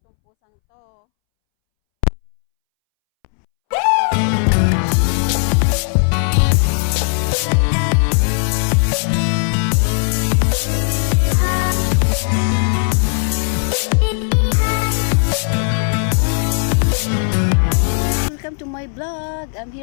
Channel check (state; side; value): silent; right; 67 dB below the other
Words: tong pusang to. Welcome to my vlog. I'm